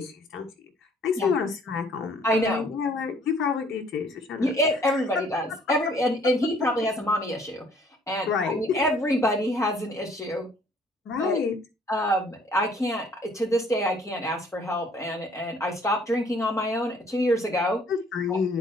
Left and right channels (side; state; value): both; normal; correlation 0.59